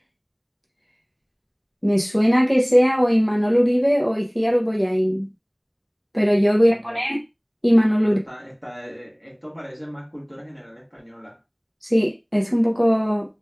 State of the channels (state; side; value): identical; both; correlation 1.00